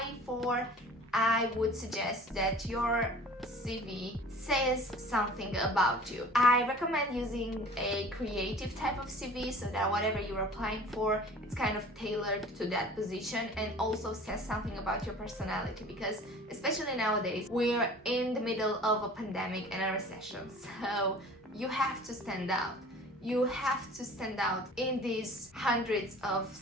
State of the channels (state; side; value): normal; both; correlation 0.45